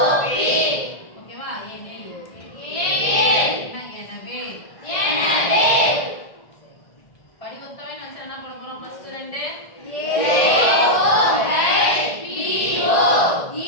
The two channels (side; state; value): right; late; 1.8 ms